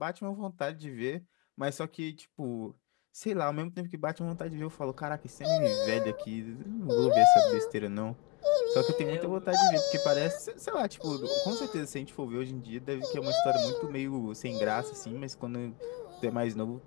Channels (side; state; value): right; quieter; 25.4 dB